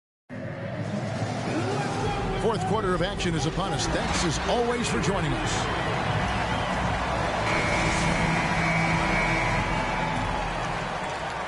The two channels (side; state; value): both; identical; correlation 1.00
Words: Fourth quarter of action is upon us. Thanks as always for joining us.